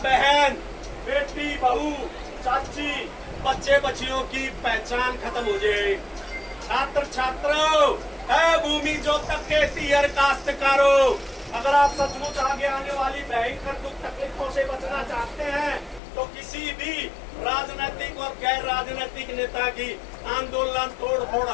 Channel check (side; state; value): right; drops out; at 16.0 s